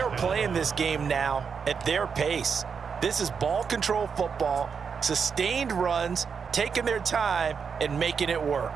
playing this game now at their pace. This is ball control football, sustained runs, taking their time, and making it work.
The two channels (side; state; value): left; quieter; 6.1 dB